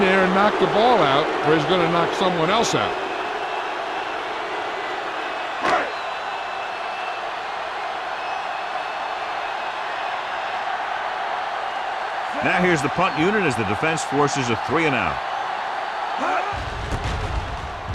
there and knock the ball out, or he's going to knock someone else out. Now here's the punt unit as the defense forces a 3 and out.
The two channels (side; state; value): both; identical; correlation 1.00